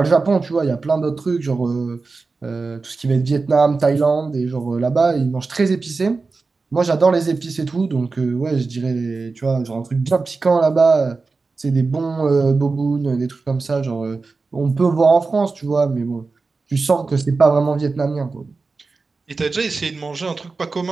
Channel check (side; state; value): left; quieter; 4.1 dB